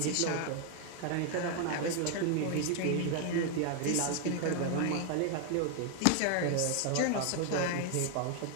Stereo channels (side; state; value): both; different; correlation 0.00